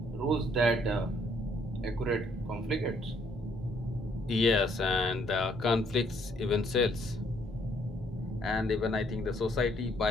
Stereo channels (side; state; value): both; normal; correlation 0.67